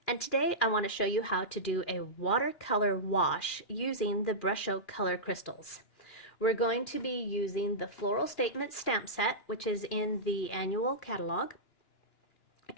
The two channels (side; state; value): right; late; 2.4 ms